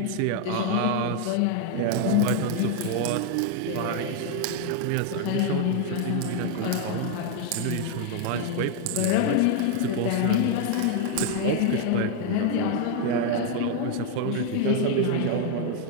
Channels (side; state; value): both; different; correlation 0.00